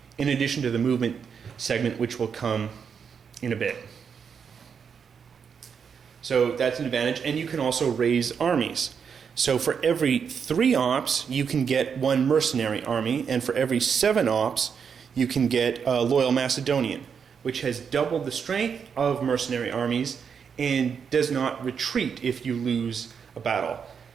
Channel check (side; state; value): left; quieter; 6.7 dB